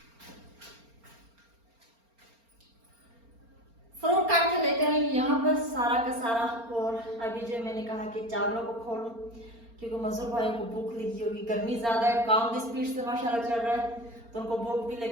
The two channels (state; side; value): late; left; 4.3 ms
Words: यहाँ पर सारा का सारा। और अभी जो मैंने कहा कि चावलों को खोलूं क्योंकि मजदूर भाइयों को भूख लगी होगी, गर्मी ज्यादा है, काम भी स्पीड से माशाल्लाह चल रहा है, तो उनको भूख भी